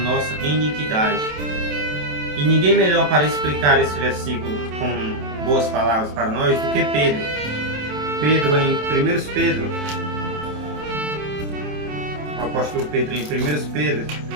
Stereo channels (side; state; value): left; late; 27 ms